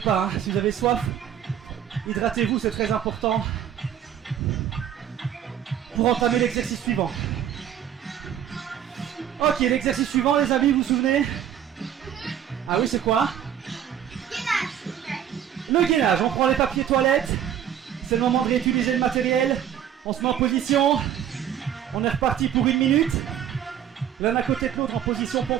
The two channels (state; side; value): quieter; left; 9.8 dB